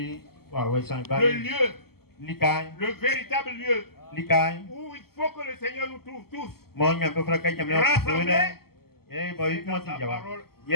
lieu, le véritable lieu où il faut que le Seigneur nous trouve tous rassemblés dans sa parole,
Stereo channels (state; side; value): late; right; 0.95 ms